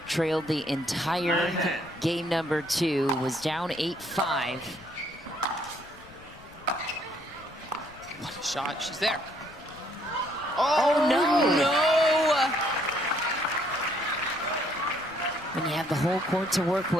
trailed the entire game number 2, was down 8-5. What a shot. She's there. Oh, no! No! When you have the whole court to work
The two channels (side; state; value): left; noise; rumble, 23 dB below the sound